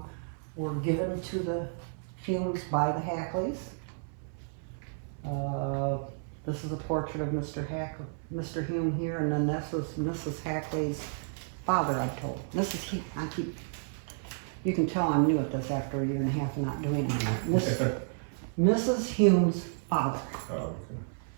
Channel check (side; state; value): left; silent; 57 dB below the other